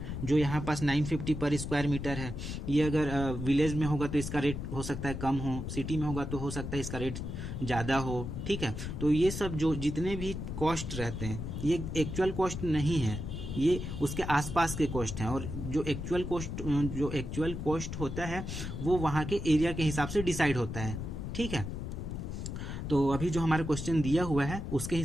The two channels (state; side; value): noise; left; rumble, 6 dB below the sound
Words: जो यहाँ पास 950 पर स्क्वायर मीटर है, ये अगर विलेज में होगा तो इसका रेट हो सकता है कम हो, सिटी में होगा तो हो सकता है इसका रेट ज़्यादा हो। ठीक है, तो ये सब जो जितने भी कॉस्ट रहते हैं ये एक्चुअल कॉस्ट नहीं है, ये उसके आसपास के कॉस्ट हैं, और जो एक्चुअल कॉस्ट होता है वो वहाँ के एरिया के हिसाब से डिसाइड होता है। ठीक है, तो अभी जो हमारा क्वेश्चन दिया हुआ है उसके